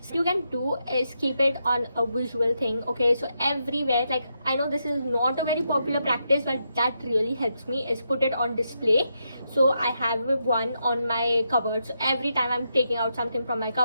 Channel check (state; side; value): inverted; both; correlation -0.82